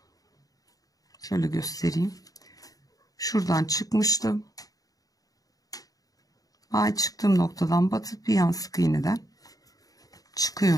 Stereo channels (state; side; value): late; right; 0.18 ms